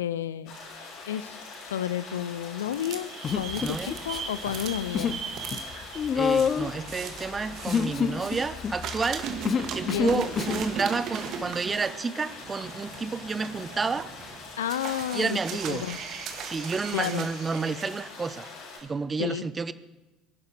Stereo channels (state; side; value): normal; both; correlation 0.54